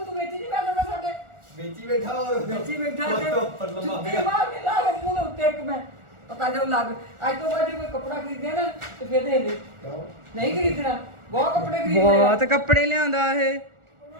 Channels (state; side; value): late; left; 1.4 ms